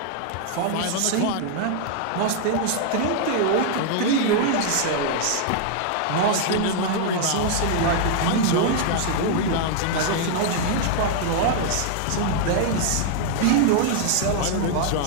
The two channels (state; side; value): different; both; correlation 0.00